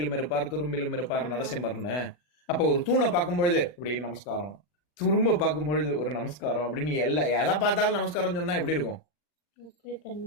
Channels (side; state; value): right; late; 40 ms